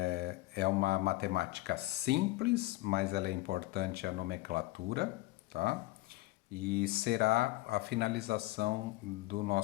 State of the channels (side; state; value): right; quieter; 19.3 dB